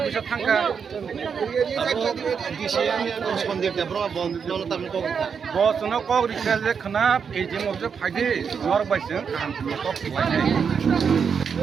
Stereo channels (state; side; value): quieter; left; 6.5 dB